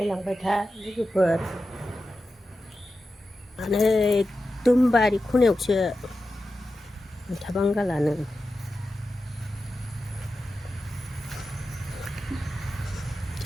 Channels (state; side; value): normal; both; correlation 0.92